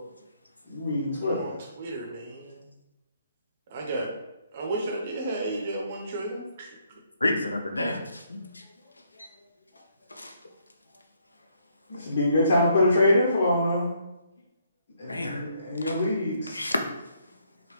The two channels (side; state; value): both; inverted; correlation -0.71